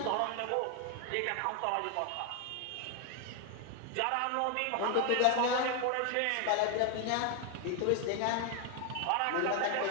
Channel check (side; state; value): both; different; correlation 0.01